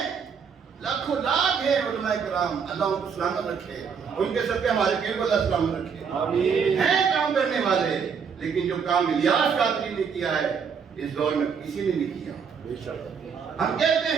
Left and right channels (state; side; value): quieter; left; 6.4 dB